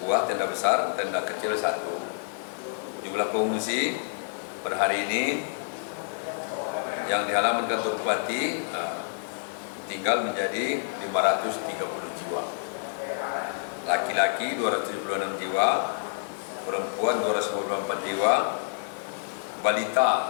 tenda besar, tenda kecil 1. Jumlah pengungsi per hari ini yang di halaman kantor bupati tinggal menjadi 530 jiwa. Laki-laki 276 jiwa, perempuan 294 jiwa,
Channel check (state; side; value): silent; right; digital silence